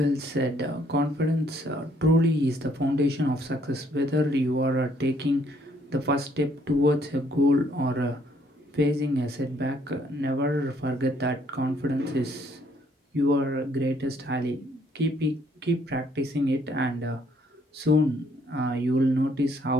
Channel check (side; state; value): both; normal; correlation 0.66